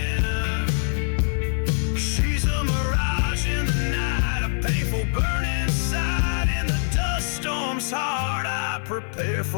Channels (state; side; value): silent; right; 63 dB below the other